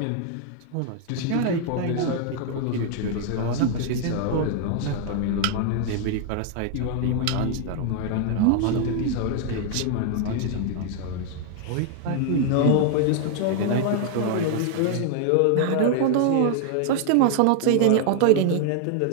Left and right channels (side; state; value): both; different; correlation 0.00